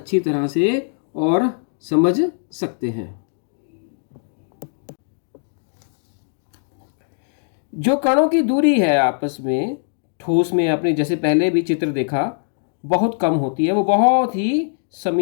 तरह से और समझ सकते हैं। जो कणों की दूरी है आपस में, ठोस में आपने जैसे पहले भी चित्र देखा, बहुत कम होती है, वो बहुत ही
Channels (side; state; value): right; silent; digital silence